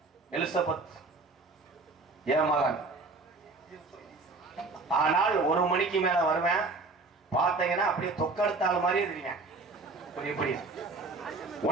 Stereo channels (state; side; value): quieter; left; 3.6 dB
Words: எலிசபெத் என் மகன் ஆனால் 1 மணிக்கு மேல வருவேன். பார்த்தீங்கன்னா அப்படியே தொக்கெடுத்தாள் மாதிரியே தெரியும். இப்படி